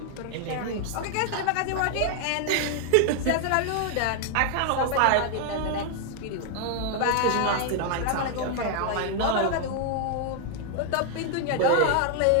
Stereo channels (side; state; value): both; different; correlation 0.00